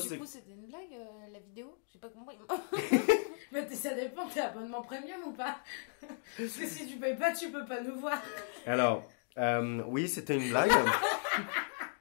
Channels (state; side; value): silent; right; 54 dB below the other